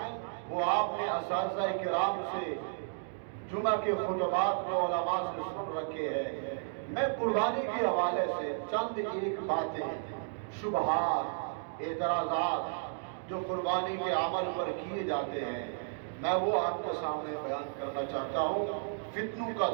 وہ آپ نے اساتذہ کرام سے جمعہ کے خطبات کو علماء سے سن رکھے ہیں۔ میں قربانی کے حوالے سے چند ایک باتیں، شبہات، اعتراضات جو قربانی کے عمل پر کیے جاتے ہیں میں وہ آپ کے سامنے بیان کرنا چاہتا ہوں۔ فتنوں کا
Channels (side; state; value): left; silent; digital silence